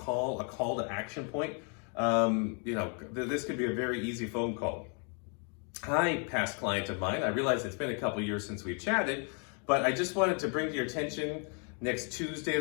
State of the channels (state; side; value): quieter; right; 38.8 dB